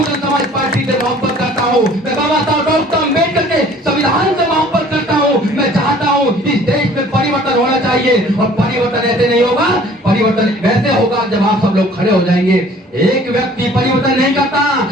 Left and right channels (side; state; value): both; normal; correlation 0.52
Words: समाज पार्टी से मोहब्बत करता हूं, मैं बाबा साहब डॉक्टर अम्बेडकर के संविधान से मोहब्बत करता हूं। मैं चाहता हूं इस देश में परिवर्तन होना चाहिए, और परिवर्तन ऐसे नहीं होगा, परिवर्तन वैसे होगा जब आप सब लोग खड़े हो जाएंगे। एक व्यक्ति परिवर्तन नहीं करता।